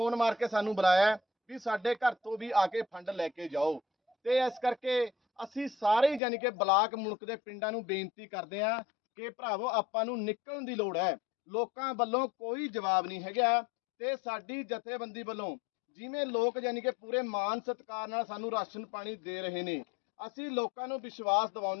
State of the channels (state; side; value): drops out; right; at 6.2 s